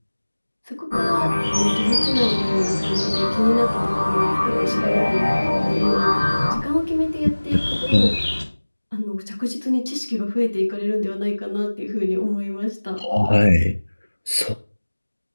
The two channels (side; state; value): both; inverted; correlation -1.00